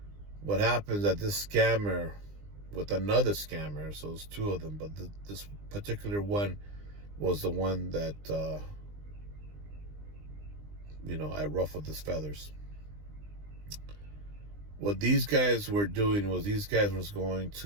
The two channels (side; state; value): left; late; 20 ms